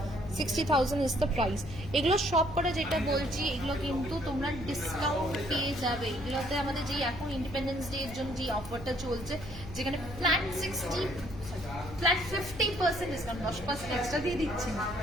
60,000 ইজ দ্য প্রাইস। এগুলো সব করে যেটা বলছি এগুলো কিন্তু তোমরা ডিসকাউন্ট পেয়ে যাবে। এগুলোতে আমাদের যেই এখন ইন্ডিপেন্ডেন্স ডে এর জন্য যে অফারটা চলছে, যেখানে ফ্ল্যাট 50% ডিসকাউন্ট, 10% এক্সট্রা দিয়ে দিচ্ছি না,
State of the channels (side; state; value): left; noise; hum, 13 dB below the sound